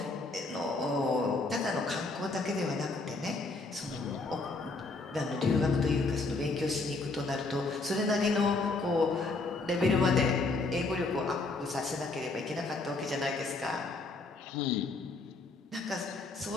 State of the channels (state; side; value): quieter; right; 3.5 dB